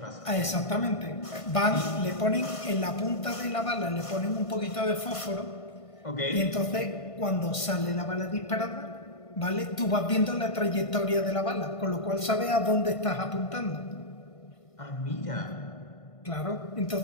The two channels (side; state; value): right; late; 1.5 ms